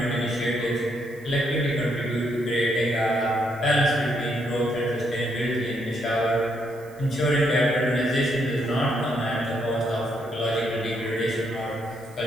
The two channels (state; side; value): noise; right; hiss, 27 dB below the sound